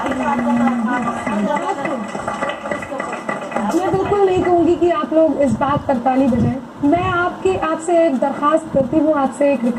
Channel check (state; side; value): identical; both; correlation 1.00